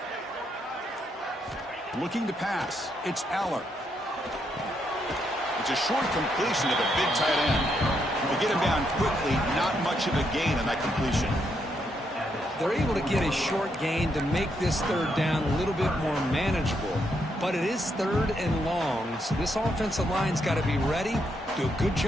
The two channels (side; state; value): both; normal; correlation 0.78